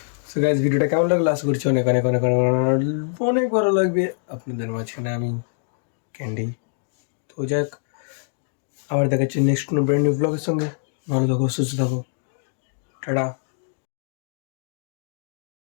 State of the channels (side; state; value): right; silent; digital silence